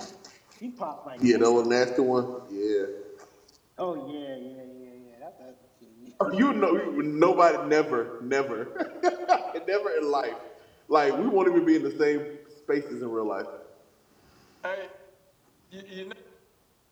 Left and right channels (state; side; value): identical; both; correlation 1.00